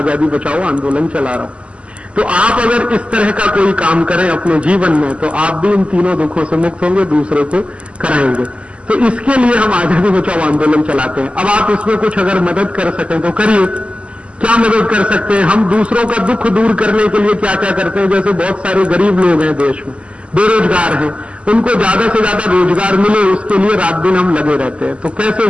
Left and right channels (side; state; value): left; late; 0.056 ms